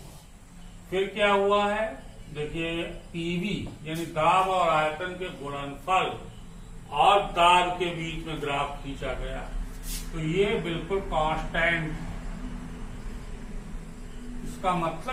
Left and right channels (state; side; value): identical; both; correlation 1.00